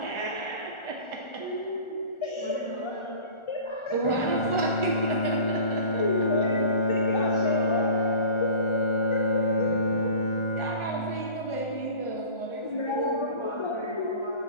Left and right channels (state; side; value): late; right; 1.4 ms